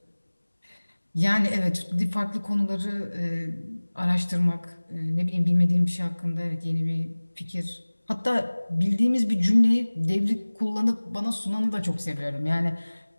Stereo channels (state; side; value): inverted; both; correlation -1.00